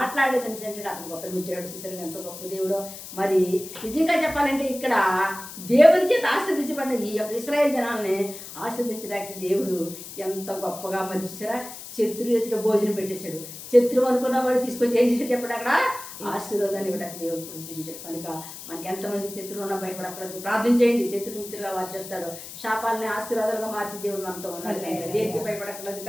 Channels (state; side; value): noise; left; hiss, 12 dB below the sound